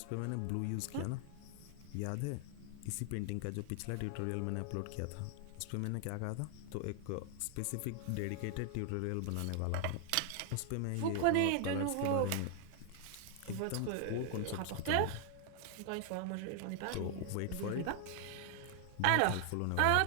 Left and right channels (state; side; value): different; both; correlation 0.00